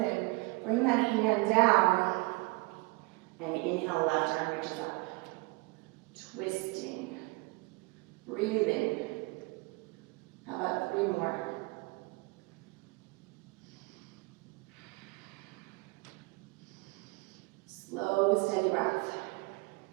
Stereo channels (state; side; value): quieter; left; 25.8 dB